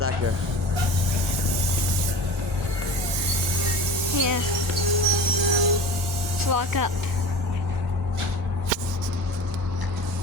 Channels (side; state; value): both; normal; correlation 0.35